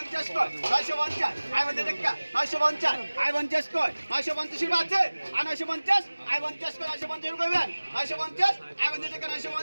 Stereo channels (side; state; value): both; inverted; correlation -1.00